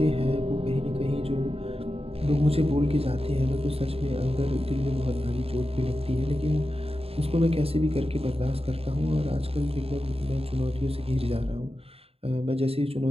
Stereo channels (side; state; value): left; late; 0.28 ms